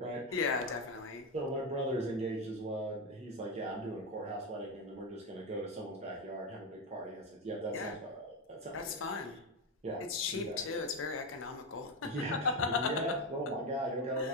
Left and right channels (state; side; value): normal; both; correlation 0.11